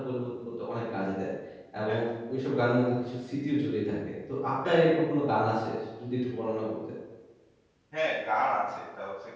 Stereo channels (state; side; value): identical; both; correlation 1.00